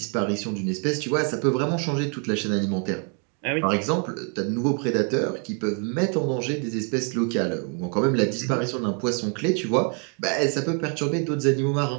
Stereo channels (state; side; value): quieter; left; 39.3 dB